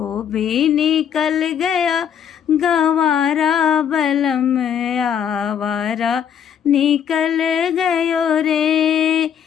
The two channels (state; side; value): quieter; right; 8.5 dB